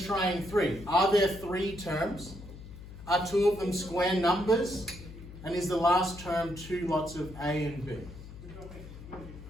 3? Are there 3 terms? Are 2 of them square numbers? And is the last term 2 lots of A and B?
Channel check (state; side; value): noise; left; hum, 14 dB below the sound